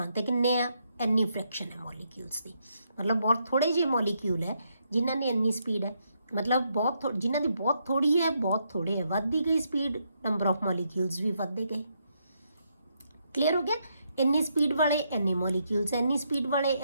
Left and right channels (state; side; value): inverted; both; correlation -0.78